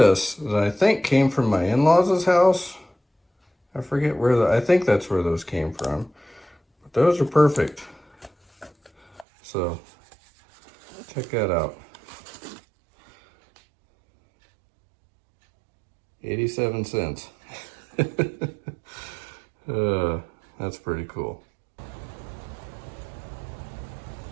that I think came from my in-laws' house. I forget where I think that's where those came from. But those are perfect. So check that out. 87 cents. That's pretty cool.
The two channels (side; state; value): left; drops out; at 9.2 s